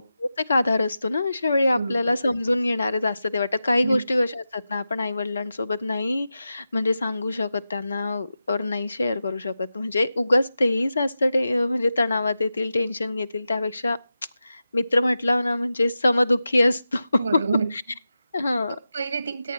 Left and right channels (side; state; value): both; inverted; correlation -0.92